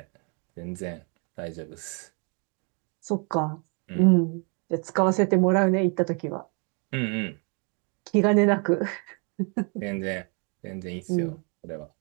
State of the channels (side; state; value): left; quieter; 35.6 dB